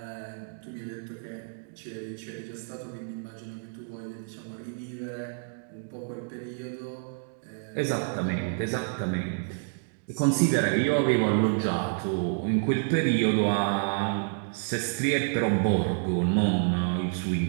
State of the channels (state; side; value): silent; left; digital silence